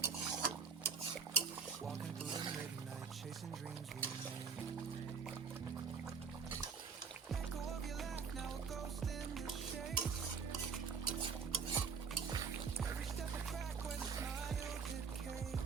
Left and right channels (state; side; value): quieter; left; 6.0 dB